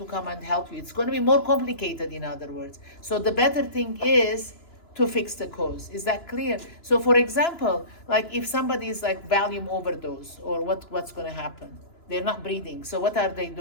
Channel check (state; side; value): late; right; 2.9 ms